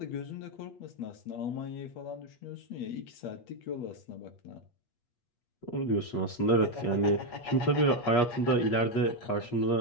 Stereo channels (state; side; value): late; right; 8.4 ms